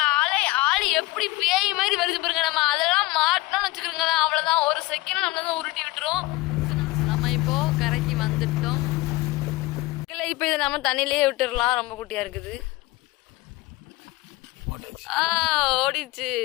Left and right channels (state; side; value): quieter; right; 20.5 dB